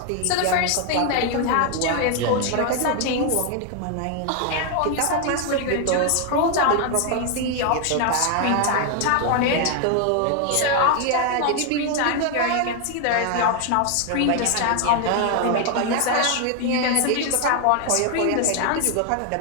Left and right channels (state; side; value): different; both; correlation 0.00